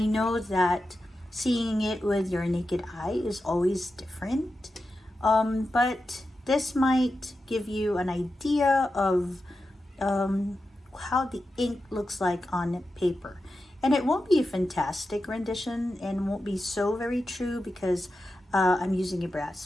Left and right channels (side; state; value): both; normal; correlation 0.90